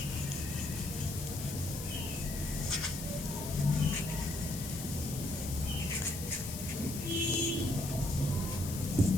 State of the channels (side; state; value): left; noise; hiss, 8 dB below the sound